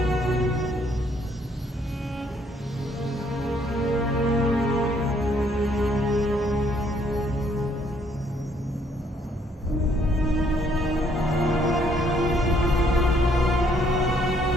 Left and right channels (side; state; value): both; normal; correlation 0.66